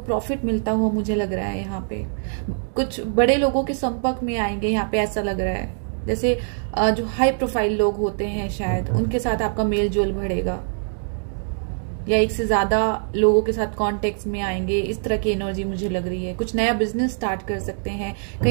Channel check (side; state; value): left; silent; digital silence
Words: मिलता हुआ मुझे लग रहा है। यहाँ पे कुछ बड़े लोगों के संपर्क में आएंगे, यहाँ पे ऐसा लग रहा है। जैसे जो हाई प्रोफाइल लोग होते हैं शायद उनके साथ आपका मेल जोल बढ़ेगा, या एक से ज्यादा लोगों के साथ कॉन्टेक्ट में आएंगे। इस तरह की एनर्जी मुझे लग रही है। कुछ नया बिजनेस स्टार्ट कर सकते हैं,